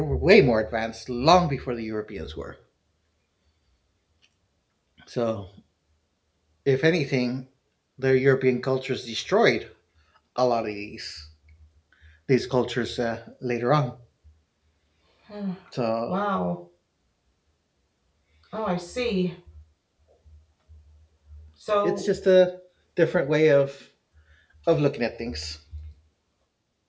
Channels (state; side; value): identical; both; correlation 1.00